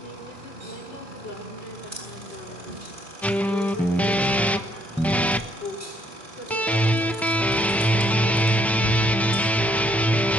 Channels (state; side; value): normal; both; correlation 0.69